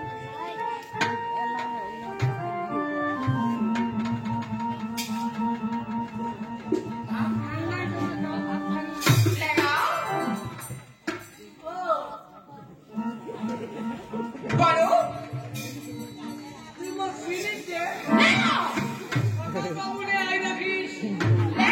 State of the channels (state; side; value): identical; both; correlation 1.00